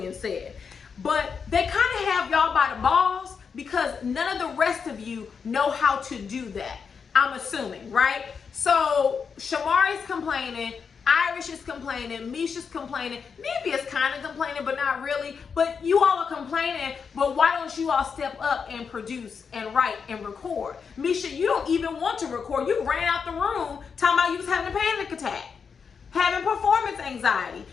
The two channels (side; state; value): right; quieter; 6.0 dB